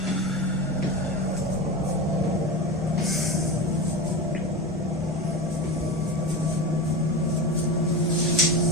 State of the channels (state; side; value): normal; both; correlation 0.24